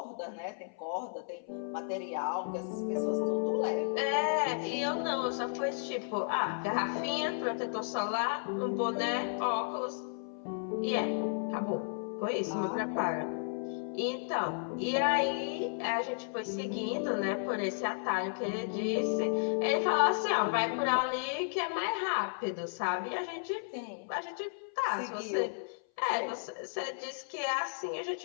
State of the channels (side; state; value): right; silent; 55 dB below the other